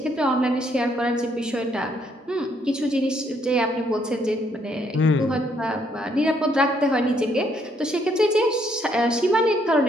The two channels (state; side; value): normal; both; correlation 0.70